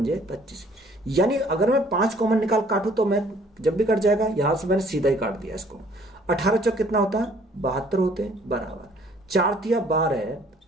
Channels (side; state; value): both; normal; correlation 0.58